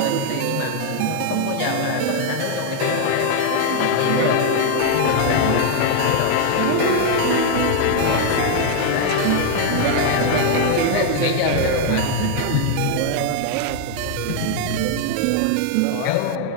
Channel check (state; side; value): different; both; correlation 0.00